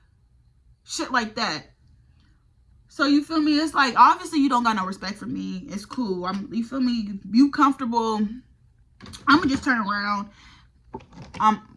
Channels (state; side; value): identical; both; correlation 1.00